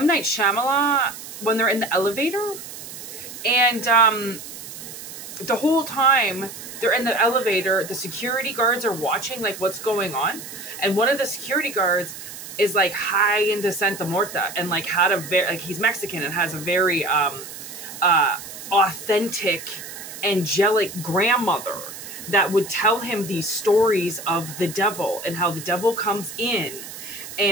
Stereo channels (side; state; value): right; noise; hiss, 12 dB below the sound